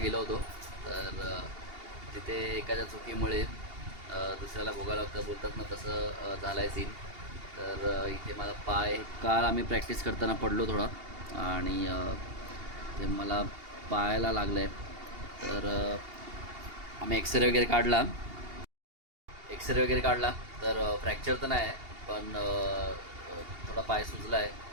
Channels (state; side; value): late; left; 2.8 ms